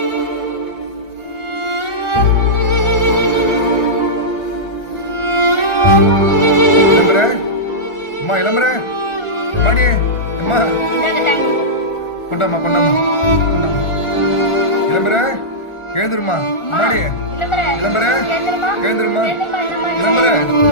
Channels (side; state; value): right; late; 1.4 ms